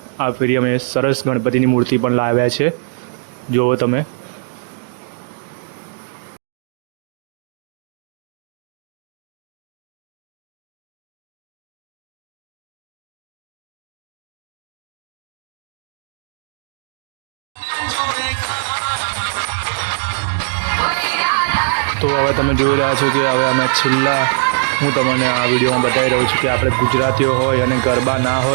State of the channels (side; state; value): left; silent; digital silence